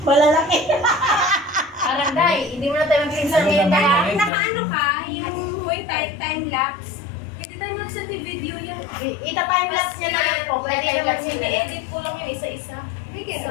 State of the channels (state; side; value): drops out; right; at 4.3 s